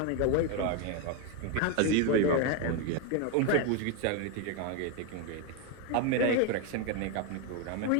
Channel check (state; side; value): different; both; correlation 0.02